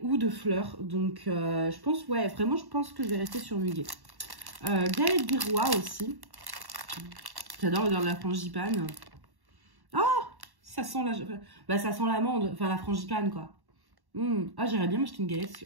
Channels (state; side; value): late; left; 1.1 ms